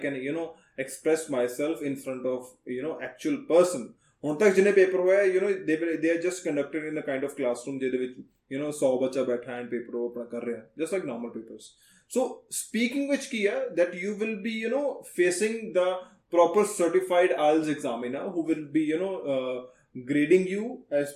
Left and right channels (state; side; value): identical; both; correlation 1.00